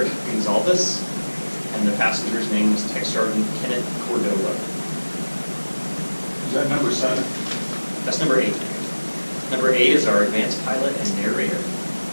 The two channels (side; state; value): both; inverted; correlation -1.00